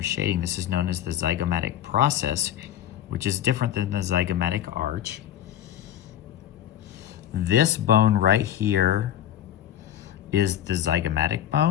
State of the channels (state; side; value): quieter; right; 11.3 dB